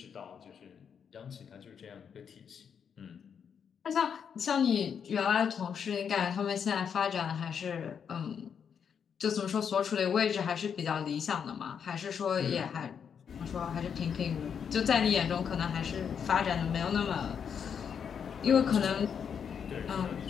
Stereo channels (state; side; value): quieter; right; 7.3 dB